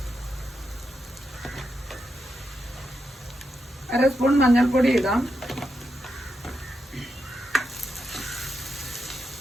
അര സ്പൂൺ മഞ്ഞൾപ്പൊടി ഇടാം.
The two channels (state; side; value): normal; both; correlation 0.85